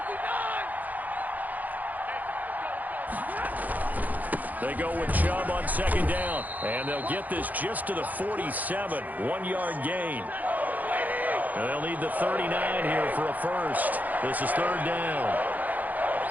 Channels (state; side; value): late; left; 0.081 ms